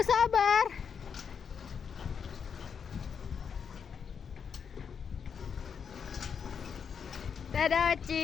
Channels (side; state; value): right; quieter; 6.8 dB